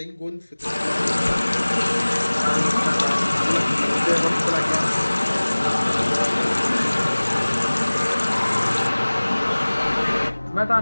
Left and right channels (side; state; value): both; inverted; correlation -1.00